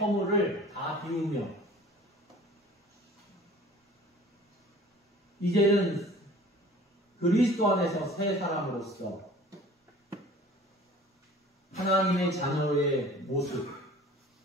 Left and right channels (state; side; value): normal; both; correlation 0.47